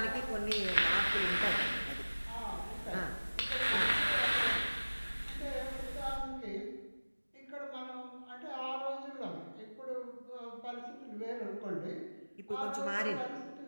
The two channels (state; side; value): inverted; both; correlation -1.00